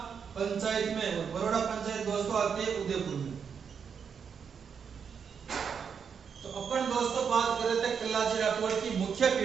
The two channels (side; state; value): left; quieter; 6.7 dB